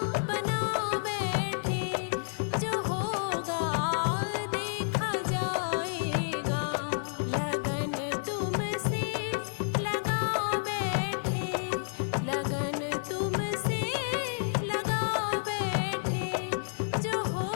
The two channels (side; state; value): right; silent; 58 dB below the other